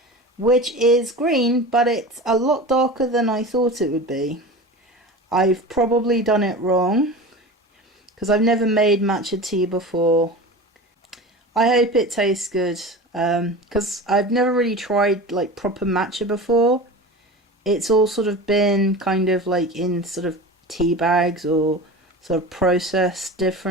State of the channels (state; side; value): normal; both; correlation 0.32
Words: which is green, but it's a lot darker than I thought it would be. I've probably done it wrong, because I've never made matcha tea before. I hope it tastes good, because I've never really tried like proper matcha before. It's all sort of been kind of like in sort of tea bags or sort of processed